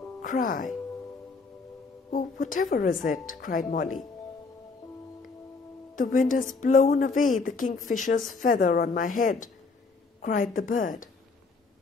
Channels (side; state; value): right; quieter; 4.2 dB